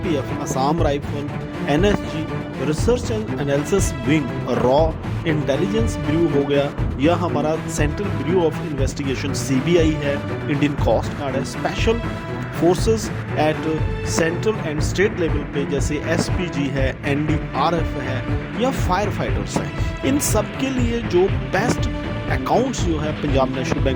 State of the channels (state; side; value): identical; both; correlation 1.00